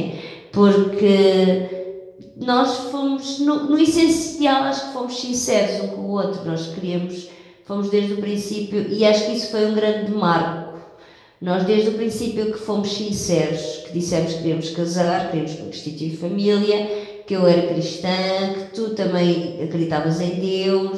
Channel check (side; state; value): both; identical; correlation 1.00